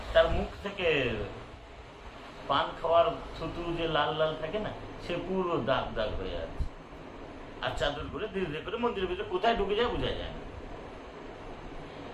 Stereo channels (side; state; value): both; identical; correlation 1.00